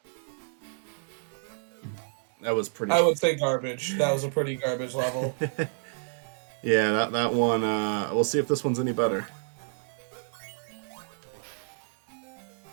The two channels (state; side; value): silent; left; digital silence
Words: pretty. I would say garbage. That was a pretty garbage level. Yeah, that one. We'll see if this one's any better.